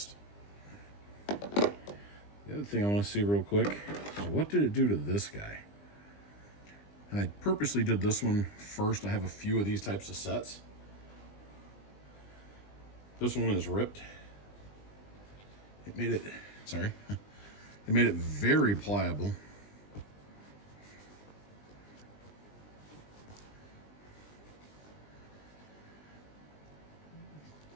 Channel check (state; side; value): late; right; 20 ms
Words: The other thing I want to see real quick is what did it do to this guy? And I purposely did this one first. I have a few of these types of sets. This one is ripped. It made it, sorry, it made it very pliable.